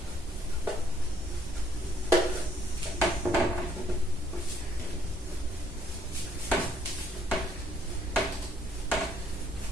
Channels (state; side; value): normal; both; correlation 0.66